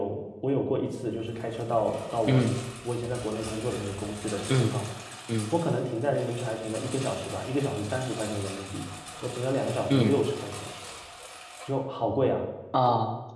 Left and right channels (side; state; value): both; identical; correlation 1.00